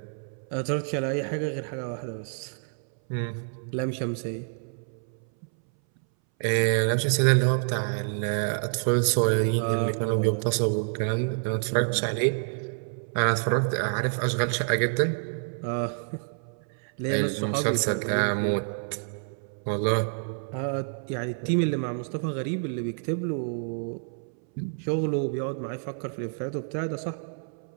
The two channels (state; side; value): silent; left; 59 dB below the other